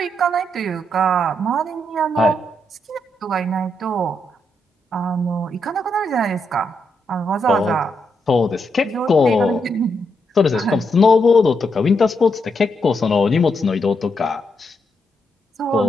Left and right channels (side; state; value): both; normal; correlation 0.80